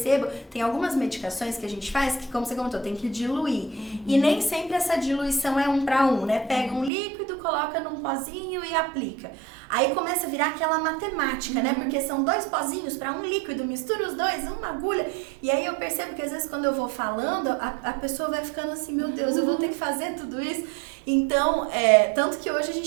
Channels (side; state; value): left; drops out; at 6.9 s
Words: tem algumas medicações que a gente faz que, como você comentou, tem que diluir. E nem sempre essa diluição é 1 para 1, né? Pega um líquido, coloca num pozinho e aplica. Aí começa a virar aquela matemática, né? Porque são 2 pozinhos para um líquido, mistura os dois, uma agulha. E aí eu percebo que às vezes quando eu vou falando, a pessoa vai ficando assim, meu Deus, eu vou ter que fazer tudo isso. Então, tanto que hoje a